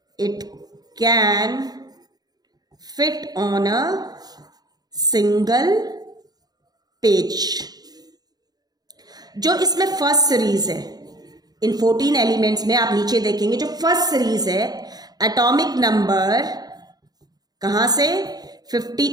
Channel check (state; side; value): late; left; 0.19 ms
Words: it can fit on a single page. जो इसमें फर्स्ट सीरीज है, इन 14 एलिमेंट्स में आप नीचे देखेंगे जो फर्स्ट सीरीज है, एटॉमिक नंबर कहाँ से